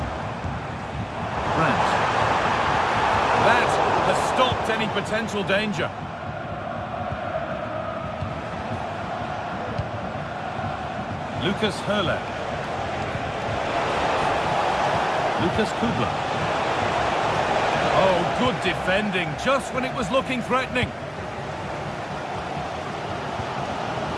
Brandt. That has stopped any potential danger. Lucas Hurler. Lucas Kubla. Oh, good defending, just when it was looking threatening.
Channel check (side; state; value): both; identical; correlation 1.00